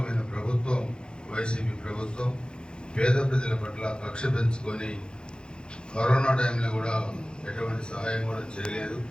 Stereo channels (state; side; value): late; right; 0.049 ms